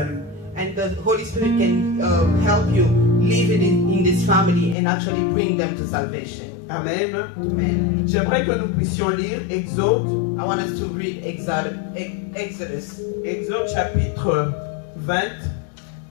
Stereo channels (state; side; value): drops out; right; at 4.8 s